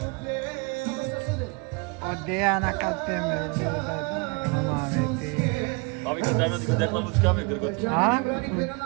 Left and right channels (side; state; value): left; quieter; 30.0 dB